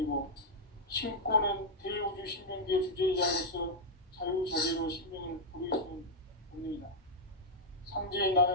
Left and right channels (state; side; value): normal; both; correlation -0.04